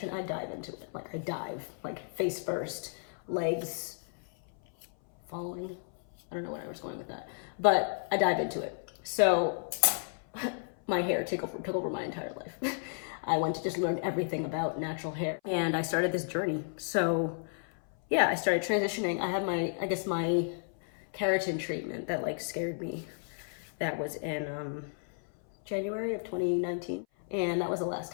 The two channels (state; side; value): silent; right; 56 dB below the other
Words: I dive into it. Like I dive, like face first, legs falling. I don't know where I was going with that, but I dive into it. So my hair took over my entire life. I went to just learn everything about natural hair, and I started this journey. So yeah, I started transitioning. I had my keratin treatment that like scared me. That was in January of 2019, and that was the last